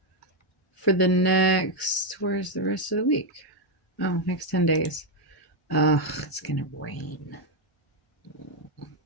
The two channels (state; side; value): normal; both; correlation 0.02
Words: for the next, where's the rest of the week? Oh, next 10 days. It's gonna rain.